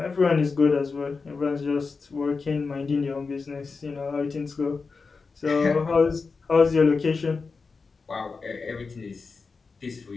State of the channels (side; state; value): right; quieter; 4.5 dB